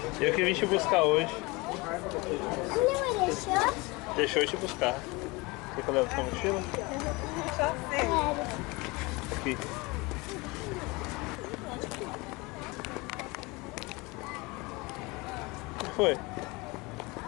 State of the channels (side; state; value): right; quieter; 24.9 dB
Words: Eu que vim te buscar hoje. Minha mãe deixou? Deixou eu te buscar. Quer que eu leve sua mochila? Quero. Aqui. O que foi? O que